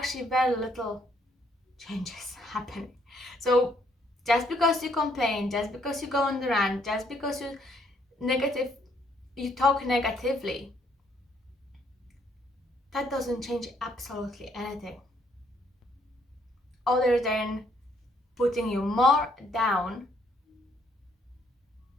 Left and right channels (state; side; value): normal; both; correlation 0.69